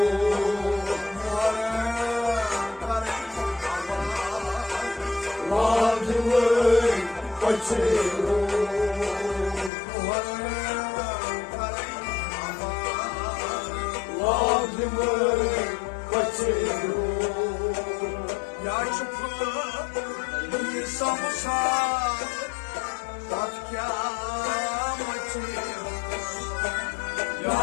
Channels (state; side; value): drops out; right; at 9.7 s